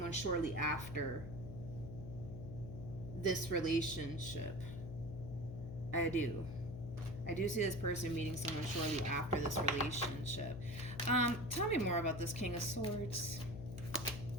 shortly after this relationship. I do. I do see this person meeting someone shortly after this relationship. Tell me more about this King of Swords.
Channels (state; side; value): noise; left; hum, 8 dB below the sound